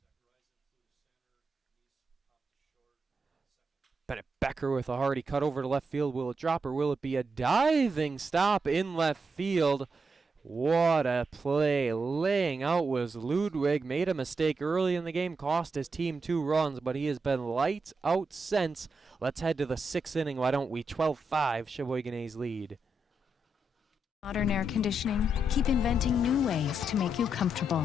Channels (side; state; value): both; normal; correlation 0.84